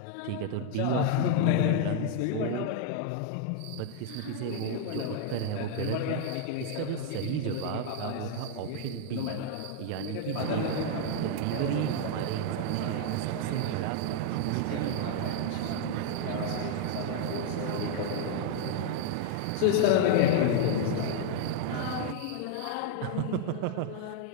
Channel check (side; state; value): both; different; correlation 0.00